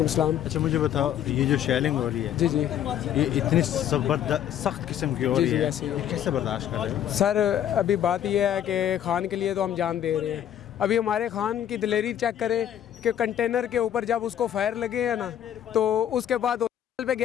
सलाम। अच्छा मुझे बताओ, ये जो शेलिंग हो रही है, जी जी ये इतनी सख्त किस्म की हो जी रही जी है, ऐसे ही है। ये कैसे बर्दाश्त कर रहे हो? सर अभी बात यह है कि खान के लिए तो हम जान दे रहे हैं। अभी हमारे खान की दिलेरी चेक करें कि कंटेनर के ऊपर जब उसको फायर लगे हैं ना, तो उसके बाद होटल पे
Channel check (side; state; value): right; quieter; 10.4 dB